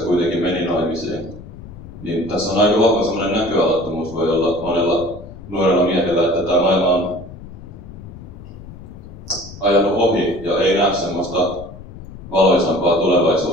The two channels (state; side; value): noise; left; rumble, 15 dB below the sound